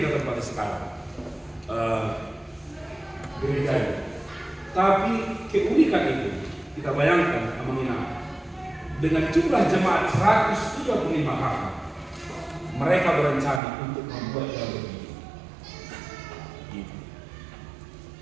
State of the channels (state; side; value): drops out; left; at 13.6 s